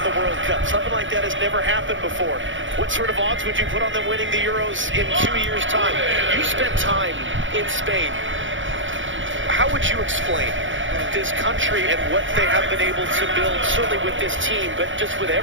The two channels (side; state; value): left; late; 0.56 ms